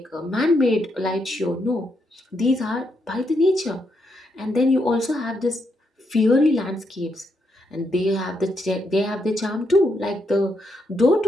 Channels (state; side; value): normal; both; correlation 0.79